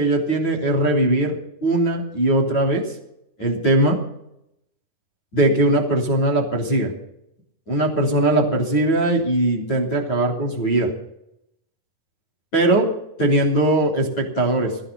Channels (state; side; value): late; right; 9.1 ms